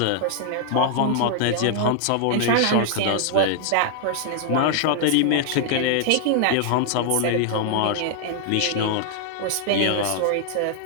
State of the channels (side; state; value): both; different; correlation 0.00